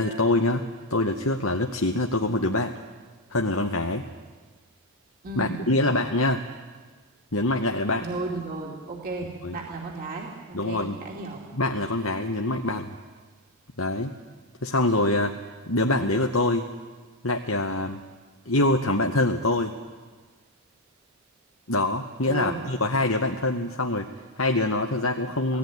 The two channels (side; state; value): both; normal; correlation 0.04